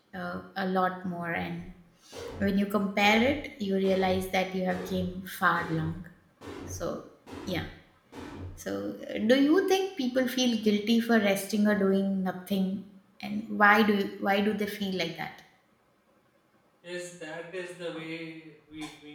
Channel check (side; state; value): both; identical; correlation 1.00